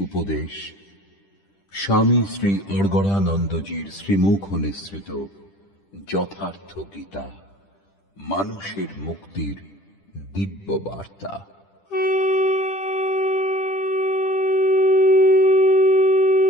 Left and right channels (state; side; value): late; right; 10 ms